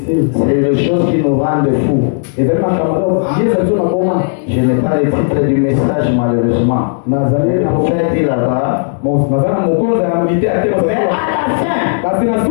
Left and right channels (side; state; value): right; silent; digital silence